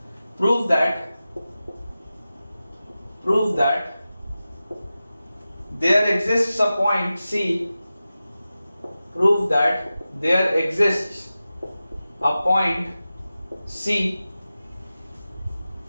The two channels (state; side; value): inverted; both; correlation -0.94